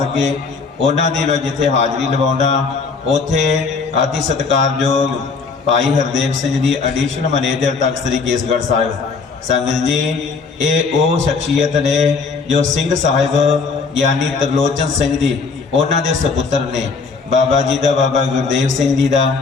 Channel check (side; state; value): right; quieter; 4.8 dB